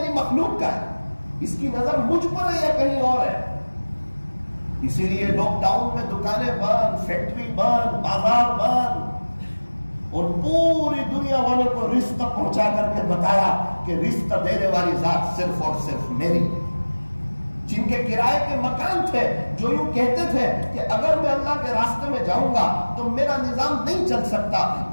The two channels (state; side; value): inverted; both; correlation -1.00